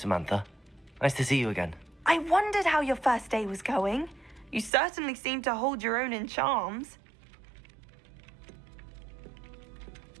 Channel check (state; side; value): drops out; left; at 4.7 s